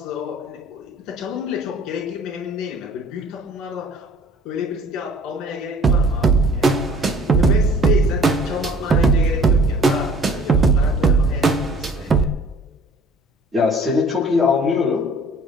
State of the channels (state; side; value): normal; both; correlation 0.51